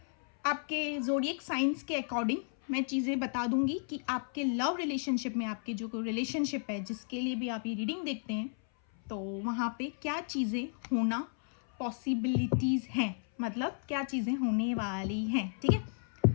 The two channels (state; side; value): silent; right; 56 dB below the other